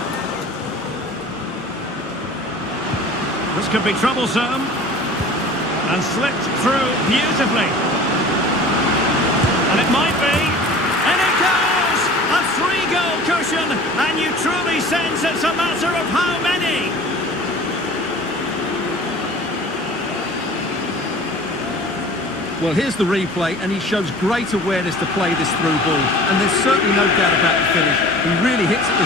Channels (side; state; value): both; normal; correlation 0.43